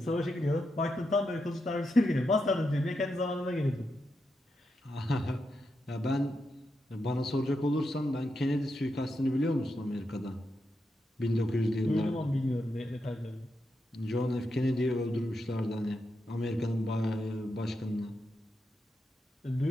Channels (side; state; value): both; normal; correlation 0.85